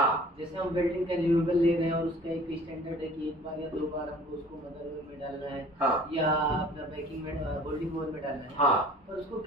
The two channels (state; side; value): normal; both; correlation 0.49